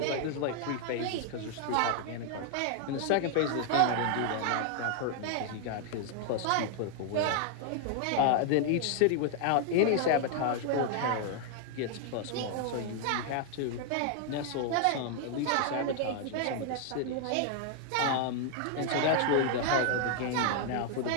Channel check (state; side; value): different; both; correlation 0.00